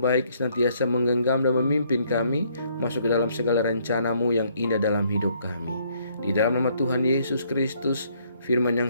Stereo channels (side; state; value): both; inverted; correlation -0.67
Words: senantiasa menggenggam dan memimpin kami masuk ke dalam segala rencana-Mu yang indah dalam hidup kami. Di dalam nama Tuhan Yesus Kristus, firman